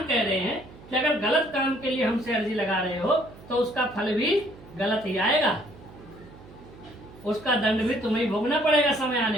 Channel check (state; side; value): noise; right; hum, 20 dB below the sound